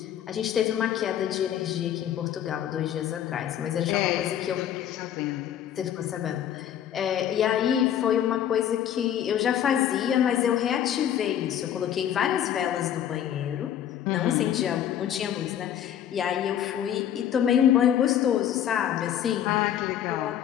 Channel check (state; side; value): quieter; right; 10.2 dB